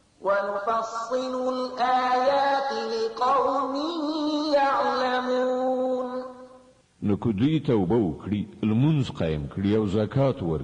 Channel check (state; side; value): identical; both; correlation 1.00